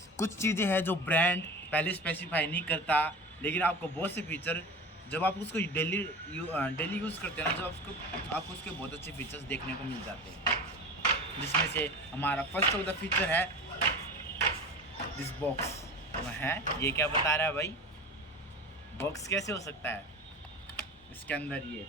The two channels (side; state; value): both; normal; correlation 0.32